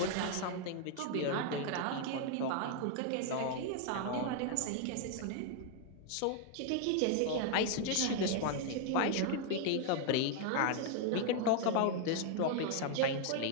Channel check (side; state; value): both; different; correlation 0.00